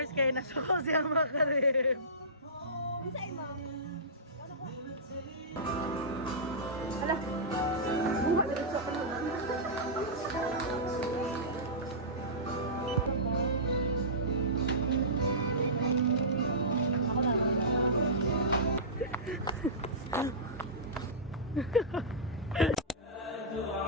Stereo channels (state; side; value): normal; both; correlation -0.18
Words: kay nasuko siya makarim. Kinsay mo?